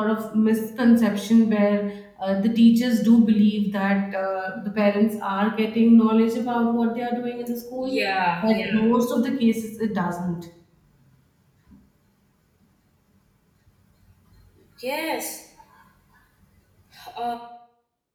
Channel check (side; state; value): both; identical; correlation 1.00